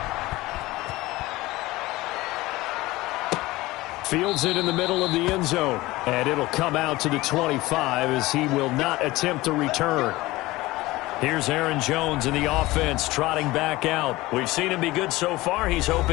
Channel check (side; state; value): right; quieter; 19.2 dB